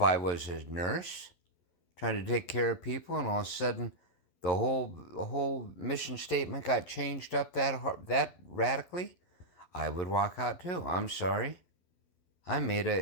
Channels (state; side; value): late; right; 11 ms